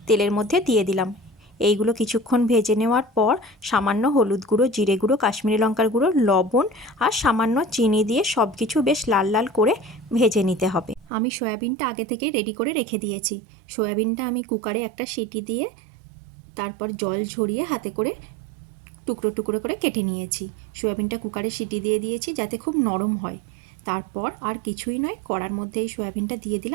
তেলের মধ্যে দিয়ে দিলাম। এইগুলো কিছুক্ষণ ভেজে নেওয়ার পর সামান্য হলুদ গুঁড়ো, জিরে গুঁড়ো, কাশ্মীরি লঙ্কার গুঁড়ো, লবণ আর সামান্য চিনি দিয়ে সব কিছু বেশ লাল লাল করে ভেজে নিতে হবে। আমি সয়াবিনটা আগে থেকে রেডি করে রেখে দিয়েছি। সয়াবিনটা আমি কুকারে একটা সিটি দিয়ে তারপর জল ঝরিয়ে হাতে করে টুকরো টুকরো করে কেটে নিয়েছি। সয়াবিনটা কুকারে সিটি দিয়ে দিয়েছি যাতে খুব নরম হয়। তারপর আর কিছুই নয়, কড়ার মধ্যে এই সয়াবিনটা দিয়ে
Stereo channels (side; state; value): left; drops out; at 11.1 s